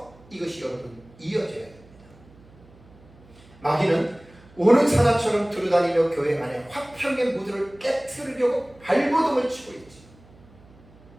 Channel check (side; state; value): right; noise; hum, 25 dB below the sound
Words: 이것이 여러분 이어져야 됩니다. 마귀는 오는 사나처럼 두루다니며 교회 안에 화평의 무드를 깨트리려고 발버둥을 치고 있지.